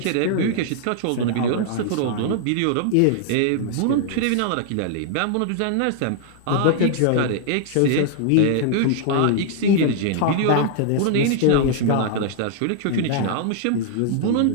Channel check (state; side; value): different; both; correlation -0.01